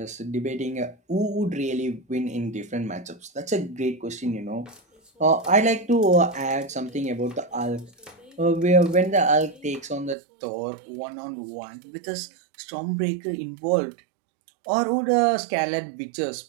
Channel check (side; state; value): left; drops out; at 10.2 s